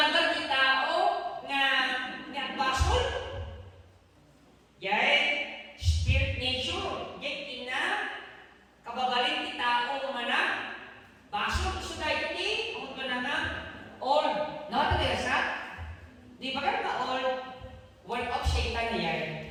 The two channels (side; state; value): both; identical; correlation 1.00